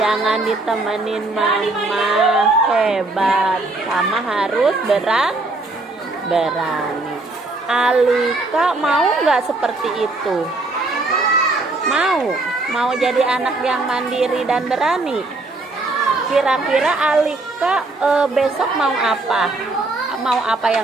ditemenin mama, hebat, sama harus berani. Alika mau nggak seperti itu? Mau jadi anak yang mandiri dan berani. Kira-kira Alika besok mau apa? Mau apa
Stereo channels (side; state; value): left; quieter; 3.1 dB